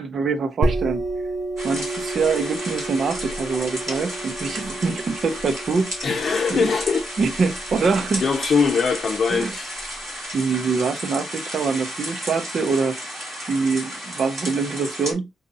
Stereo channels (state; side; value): normal; both; correlation 0.78